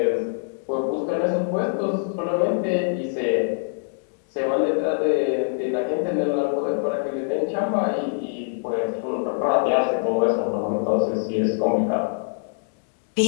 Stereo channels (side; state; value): right; silent; 63 dB below the other